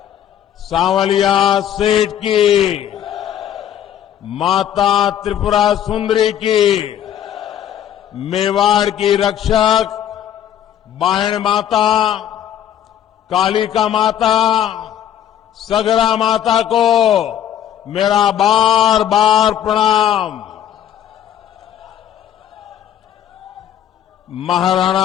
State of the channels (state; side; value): quieter; right; 10.4 dB